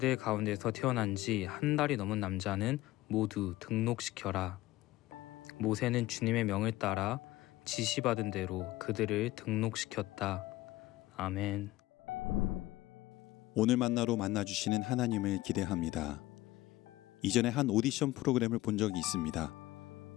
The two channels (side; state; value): right; quieter; 17.5 dB